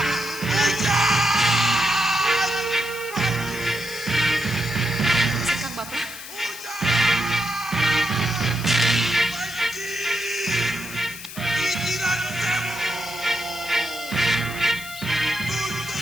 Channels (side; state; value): left; noise; hiss, 12 dB below the sound